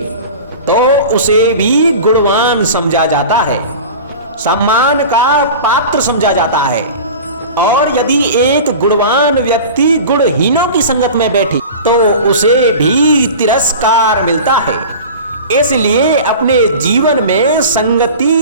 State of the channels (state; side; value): inverted; both; correlation -0.35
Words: तो उसे भी गुणवान समझा जाता है, सम्मान का पात्र समझा जाता है। और यदि एक गुणवान व्यक्ति गुणहीनों की संगत में बैठे तो उसे भी तिरस्कार मिलता है। इसलिए अपने जीवन में